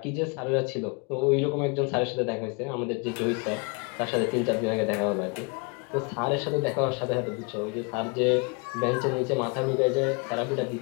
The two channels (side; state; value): right; quieter; 32.9 dB